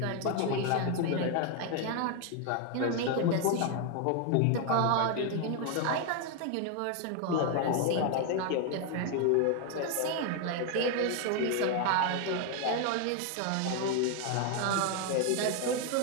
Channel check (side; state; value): both; different; correlation 0.01